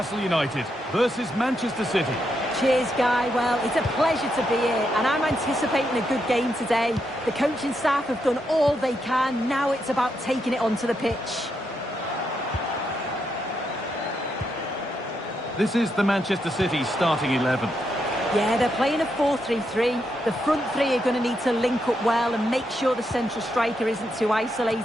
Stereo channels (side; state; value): both; normal; correlation 0.81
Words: United versus Manchester City. Cheers, Guy. Well, it's a pleasure to be here, and I'm anticipating a good game today. The coaching staff have done all they can. Now it's about taking it onto the pitch. This is the Manchester City starting 11. Yeah, they're playing a 4-3-3. The front three are going to need to link up well and make sure the central striker isn't too